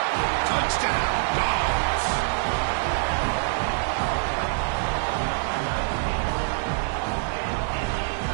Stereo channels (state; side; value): silent; left; digital silence